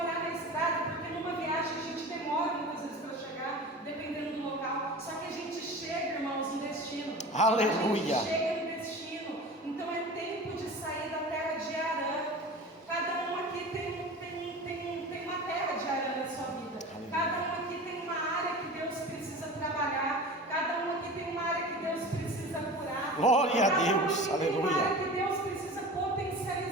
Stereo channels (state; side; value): normal; both; correlation 0.35